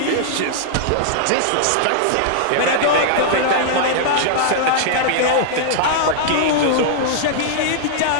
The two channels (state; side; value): different; both; correlation -0.01